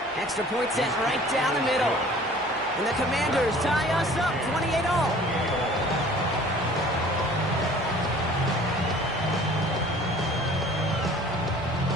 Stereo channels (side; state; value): both; normal; correlation 0.49